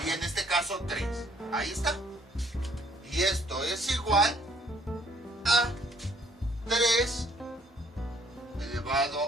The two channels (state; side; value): normal; both; correlation 0.63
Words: en este caso 3. Ahí está. Y esto es igual a 3